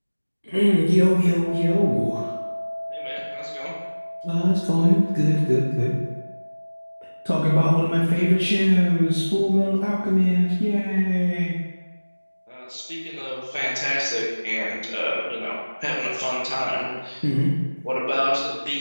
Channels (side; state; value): both; inverted; correlation -1.00